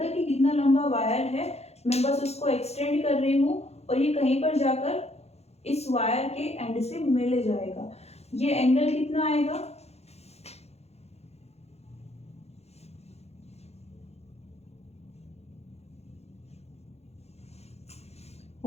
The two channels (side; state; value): right; late; 0.31 ms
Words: कि कितना लंबा वायर है, मैं बस उसको एक्सटेंड कर रही हूँ और ये कहीं पर जाकर इस वायर के एंड से मिल जाएगा। ये एंगल कितना आएगा,